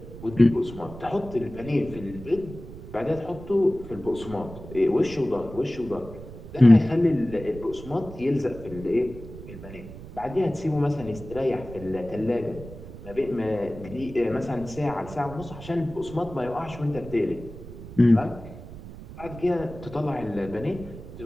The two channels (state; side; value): noise; right; rumble, 14 dB below the sound